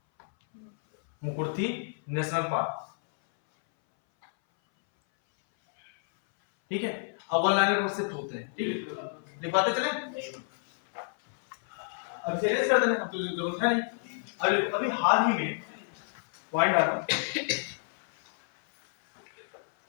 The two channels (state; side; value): silent; right; 58 dB below the other